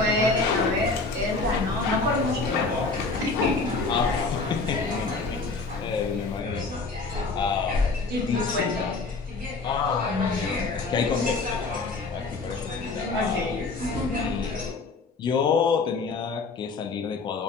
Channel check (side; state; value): right; quieter; 3.9 dB